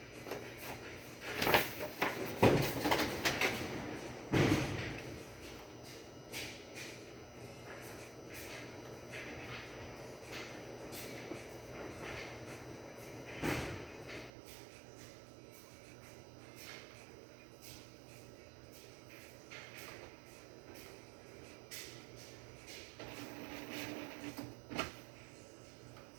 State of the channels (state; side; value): drops out; left; at 14.3 s